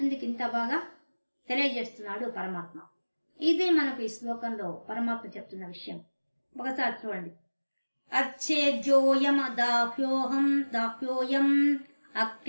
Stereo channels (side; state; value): both; inverted; correlation -1.00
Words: ఇంత బాగా తెలియజేస్తున్నాడు పరమాత్మ. ఇది మనకు ఈ శ్లోకంలో పరమాత్మ చెప్తున్న విషయం. ఒకసారి చూడండి. అచ్చేద్యోయం దాహ్యోయం